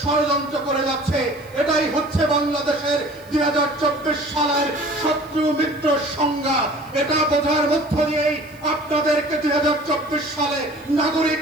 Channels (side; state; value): right; noise; hiss, 27 dB below the sound